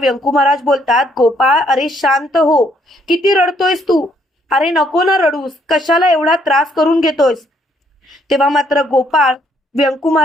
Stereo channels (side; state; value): both; normal; correlation 0.69